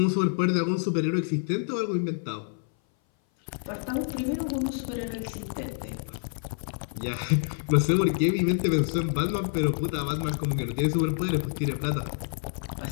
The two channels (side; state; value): right; silent; 57 dB below the other